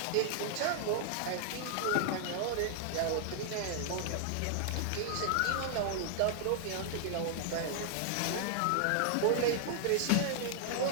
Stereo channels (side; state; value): both; different; correlation -0.01